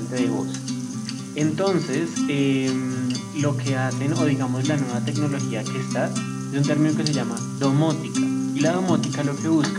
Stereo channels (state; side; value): identical; both; correlation 1.00